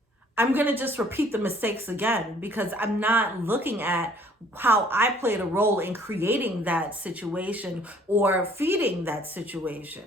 I'm going to just repeat the mistakes again, because I'm not looking at how I played a role in creating that situation or feeding that situation.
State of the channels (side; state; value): both; normal; correlation 0.57